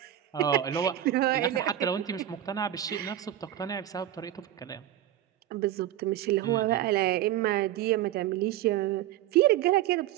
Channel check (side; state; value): left; quieter; 12.3 dB